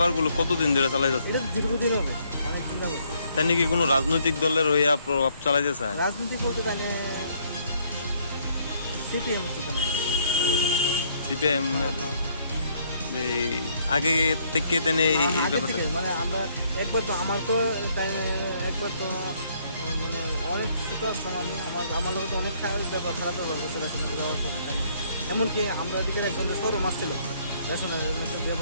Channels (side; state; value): both; inverted; correlation -0.67